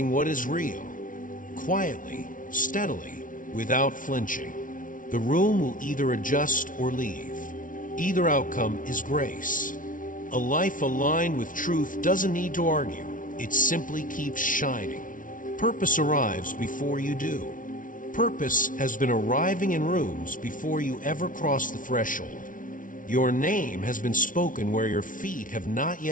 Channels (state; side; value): late; right; 0.38 ms